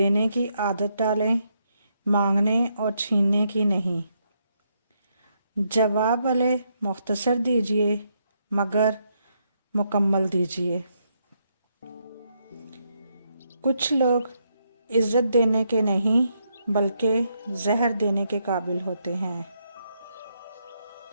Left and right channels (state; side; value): inverted; both; correlation -0.78